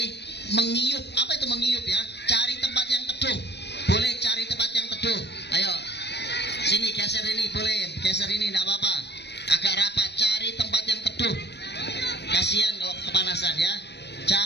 mengiyup. Apa itu mengiyup ya? Cari tempat yang teduh. Boleh cari tempat yang teduh. Ayo, sini geser ini, boleh geser ini, tidak apa-apa. Agak rapat, cari tempat yang teduh. Kasihan kalau kepanasan ya.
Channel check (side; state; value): right; late; 0.50 ms